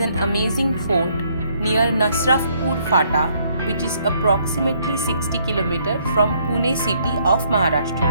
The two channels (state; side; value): inverted; both; correlation -0.68